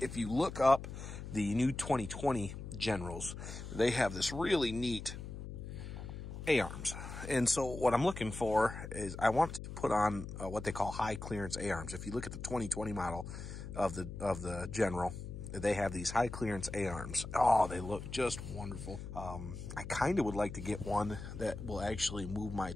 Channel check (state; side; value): noise; left; hum, 9 dB below the sound